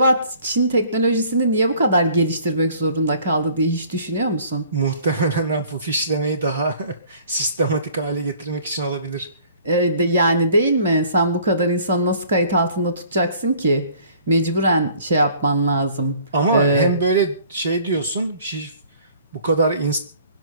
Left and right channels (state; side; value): inverted; both; correlation -0.54